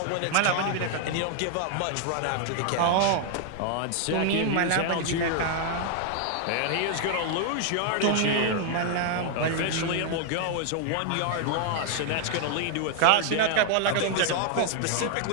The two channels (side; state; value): both; different; correlation 0.00